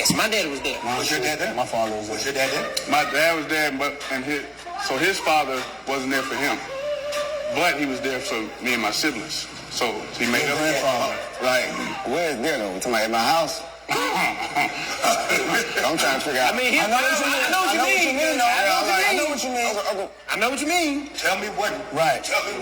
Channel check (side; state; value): both; identical; correlation 1.00